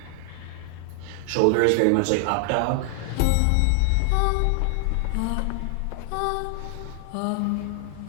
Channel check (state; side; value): different; both; correlation 0.00